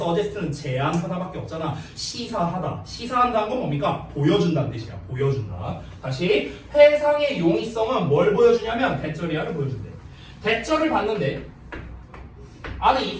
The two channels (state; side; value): identical; both; correlation 1.00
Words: 제안하다밖에 없잖아. 시사하다. 시사한다는 건 뭡니까? 보여준다는 뜻이야. 보여준다. 다시, 해상의 용이성은 뭘 보여주냐면 대절이야를 보여준대. 대절을 봤는데 안에